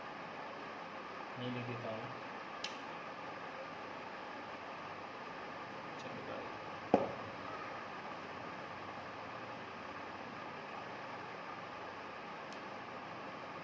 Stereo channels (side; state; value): both; identical; correlation 1.00